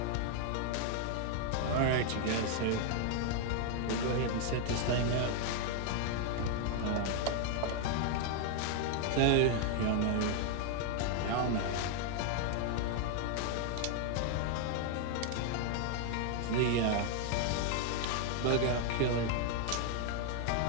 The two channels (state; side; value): different; both; correlation 0.00